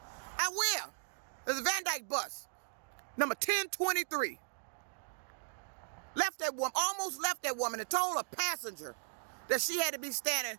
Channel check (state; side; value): silent; left; digital silence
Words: I will. There's a Van Dyke bus, number 1023. Almost left that woman and told a passenger that she had to be